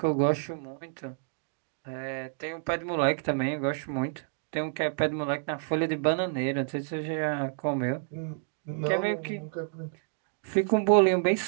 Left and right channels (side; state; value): left; silent; 58 dB below the other